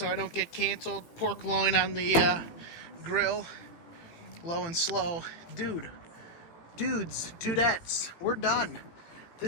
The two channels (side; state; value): right; late; 17 ms